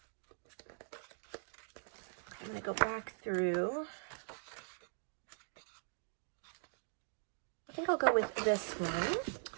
I'm going to go back through. I think I'll go with this one.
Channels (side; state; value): left; silent; 50 dB below the other